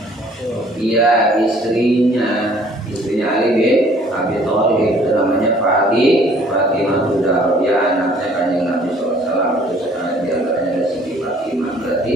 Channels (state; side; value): normal; both; correlation 0.57